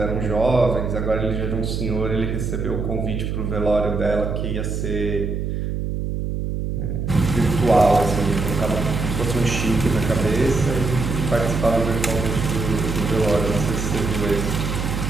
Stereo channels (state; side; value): noise; right; hum, 2 dB below the sound